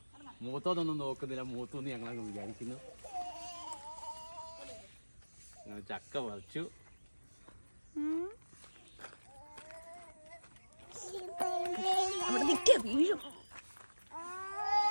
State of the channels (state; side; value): inverted; both; correlation -1.00